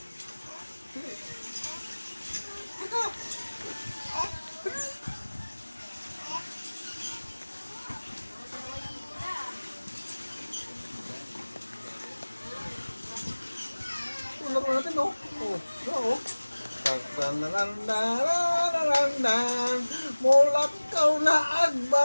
Ito. Laro natin, no? Oo. Tanananananananan, mulak kau na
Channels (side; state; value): both; inverted; correlation -1.00